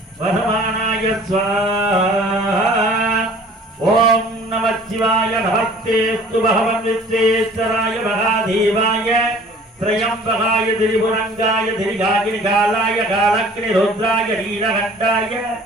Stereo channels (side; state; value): both; normal; correlation 0.50